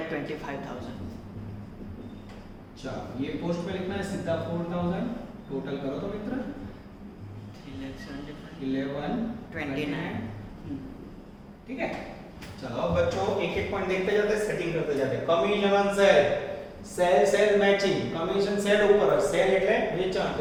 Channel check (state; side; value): identical; both; correlation 1.00